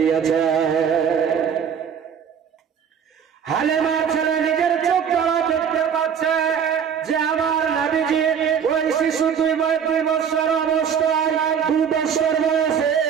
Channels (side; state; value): left; quieter; 7.6 dB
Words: হালেমার ছেলে নিজের চোখ দ্বারা দেখতে পাচ্ছে যে আমার নবীজি ওই শিশু 2 বছর অবস্থায়, 2 বছর বয়সে